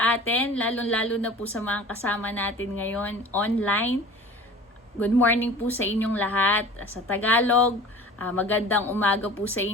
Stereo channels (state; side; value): normal; both; correlation 0.42